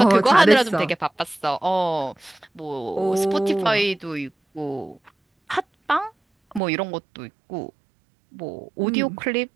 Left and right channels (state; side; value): drops out; left; at 6.6 s